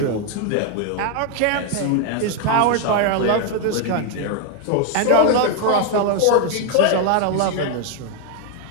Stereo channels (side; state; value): both; different; correlation 0.01